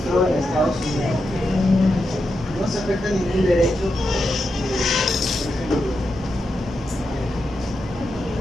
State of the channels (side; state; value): both; normal; correlation 0.86